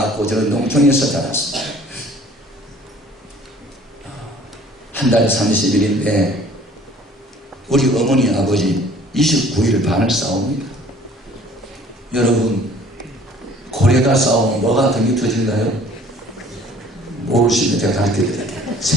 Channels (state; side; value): normal; both; correlation 0.53